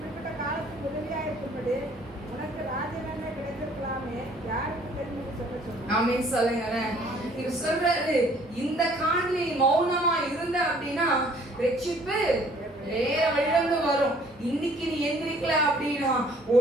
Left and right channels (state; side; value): normal; both; correlation 0.58